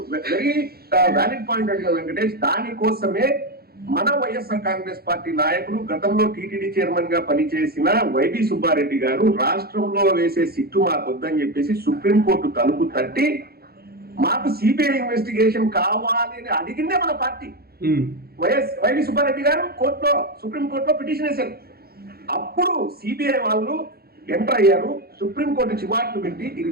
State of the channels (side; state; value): left; late; 0.45 ms